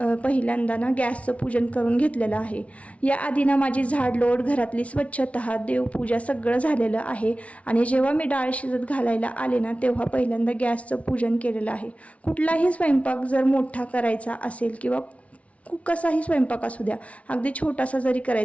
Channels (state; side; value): late; right; 0.064 ms